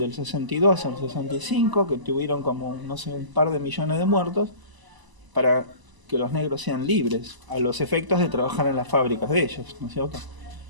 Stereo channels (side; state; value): left; late; 1.0 ms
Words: 62 al 65, que tuvieron como, no sé, un par de millones de muertos, para que los negros sean libres, a los efectos de trabajar en las fábricas de ellos, ¿no es cierto?